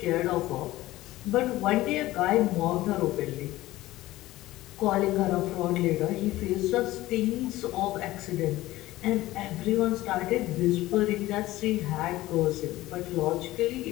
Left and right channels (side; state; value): right; quieter; 17.0 dB